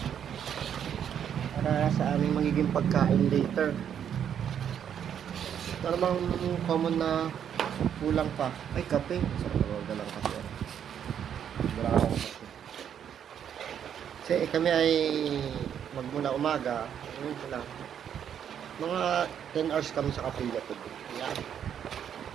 Para sa aming magiging pagkain later. Ito namang common na kulang pa. Ay, kape. So, wala lang kasi. Wala akong kape. Kasi kami ay magmula umaga. Ano lang. Mga 10 hours kami sa Kapilya today. Yan.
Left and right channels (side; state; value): left; quieter; 8.8 dB